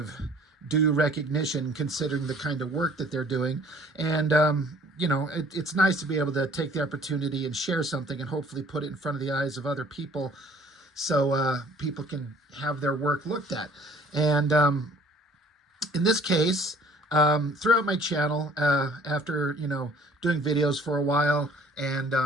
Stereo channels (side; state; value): both; normal; correlation 0.54